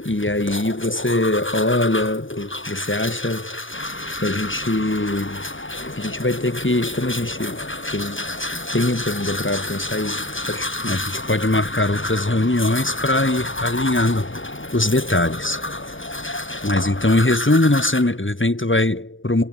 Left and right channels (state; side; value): late; right; 0.57 ms